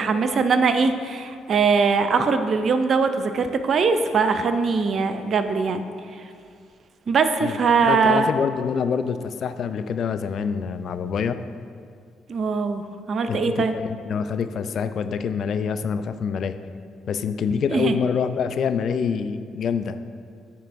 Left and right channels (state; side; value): normal; both; correlation 0.70